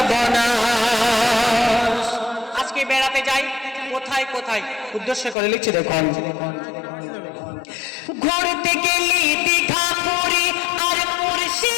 আজকে বেড়াতে যাই কোথায় কোথায়, উদ্দেশ্য করে লিখছি দেখুন। ঘুরতে গেলি দীঘা পুরী আর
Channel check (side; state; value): right; drops out; at 5.4 s